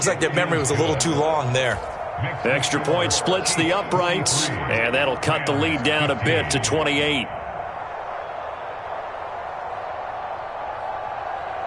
like their memory was a little too long there. The extra point splits the uprights, and that'll cut the lead down a bit to 28.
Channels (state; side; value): identical; both; correlation 1.00